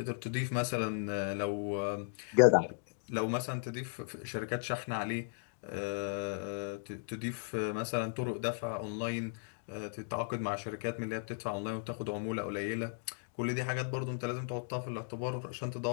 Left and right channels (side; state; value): right; silent; digital silence